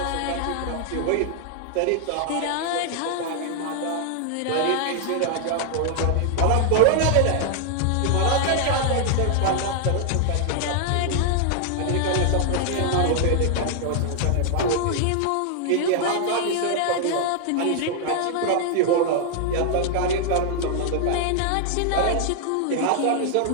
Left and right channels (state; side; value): different; both; correlation 0.00